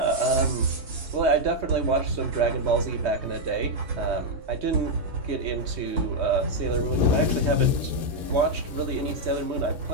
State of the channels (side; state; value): left; late; 3.2 ms